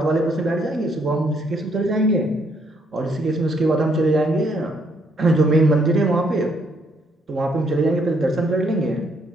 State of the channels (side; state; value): both; normal; correlation 0.70